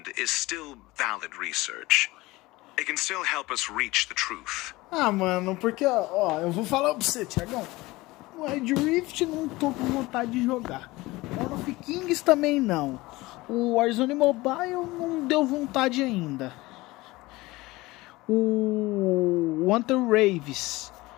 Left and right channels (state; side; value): quieter; right; 20.4 dB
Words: is still valid research. It can still help us reach the truth. Mano, porque, ó, eu vou falar pra você, Thiagão. O Wild Rift não tô com vontade de jogar. O of Kings também não. O Warzone Mobile não deu vontade ainda. O Hunter Raves